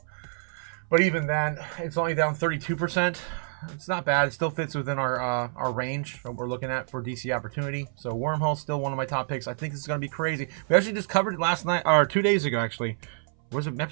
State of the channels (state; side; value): silent; left; 59 dB below the other